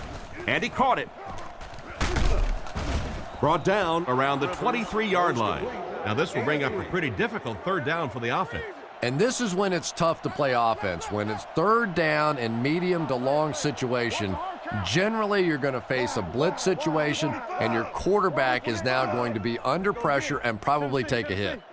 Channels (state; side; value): identical; both; correlation 1.00